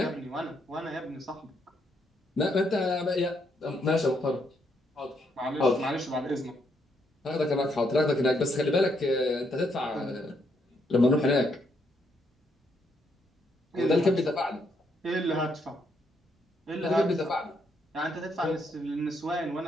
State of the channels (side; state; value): both; normal; correlation 0.75